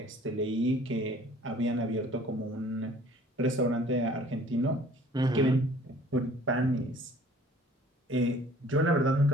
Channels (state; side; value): normal; both; correlation 0.53